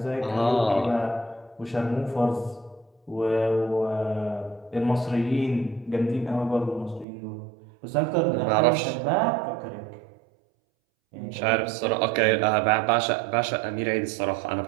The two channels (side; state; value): left; drops out; at 7.1 s